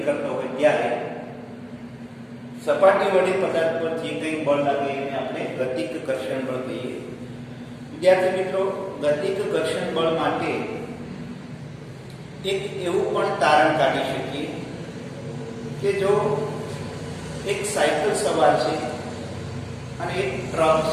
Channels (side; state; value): both; identical; correlation 1.00